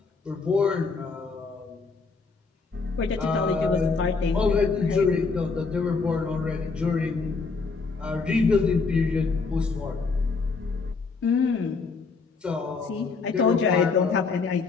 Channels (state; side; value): quieter; right; 4.5 dB